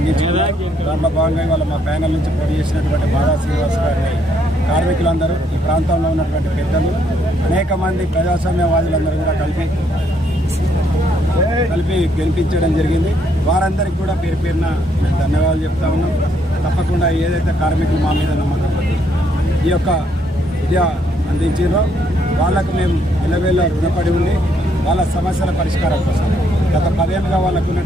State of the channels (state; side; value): normal; both; correlation 0.71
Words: దాంట్లో భాగంగా ఇవాళ మా ప్యానెల్ నుంచి పోటీ చేసినటువంటి బాదా శ్రీనివాస్ గారిని కార్మికులందరూ, ఈ ప్రాంతంలో ఉన్నటువంటి పెద్దలు, అనేక మంది ప్రజాస్వామ్యవాదులందరూ కూడా కలిపి గెలిపించడం జరిగింది. వారందరికీ కూడా పేరు పేరున మేము ధన్యవాదాలు చెప్తా ఉన్నాం. తప్పకుండా ఏదైతే కార్మికులు మా మీద నమ్మకం ఈ యొక్క విద్య అందించారో వాళ్ళకు మేము ఇళ్ళవేళ్ళ రుణపడి ఉండి వాళ్ళ సమస్యల పరిష్కారం కోసం గత 10 ఏళ్ళుగా వాళ్ళకు